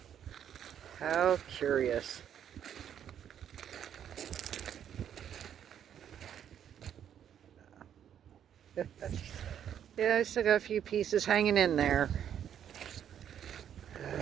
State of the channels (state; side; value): quieter; left; 9.4 dB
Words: How curious. Yeah, I still got a few pieces hanging in there.